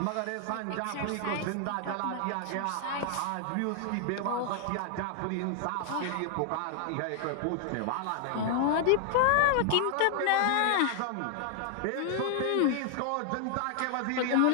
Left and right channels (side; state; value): both; different; correlation 0.00